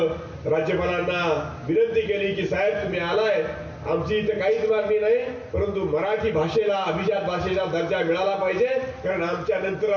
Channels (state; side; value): identical; both; correlation 1.00